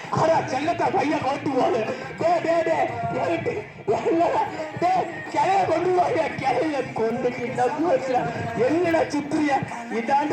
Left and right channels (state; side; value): identical; both; correlation 1.00